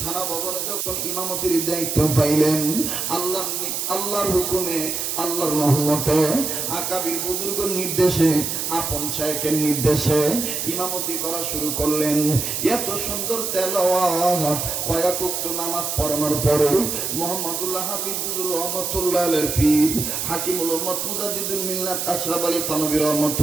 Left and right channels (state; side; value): noise; right; hiss, 2 dB below the sound